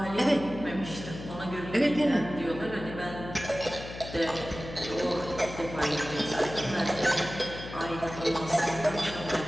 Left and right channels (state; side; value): noise; left; hum, 11 dB below the sound